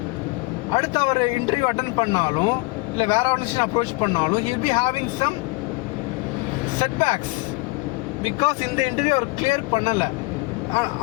அடுத்து அவர் இன்டர்வியூ அட்டன் பண்ணாலும் இல்லை வேற ஆர்கனைசேஷன் அப்ரோச் பண்ணாலும் he will be having some setbacks because இந்த இன்டர்வியூ அவர் கிளியர் பண்ணலை.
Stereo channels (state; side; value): quieter; right; 25.2 dB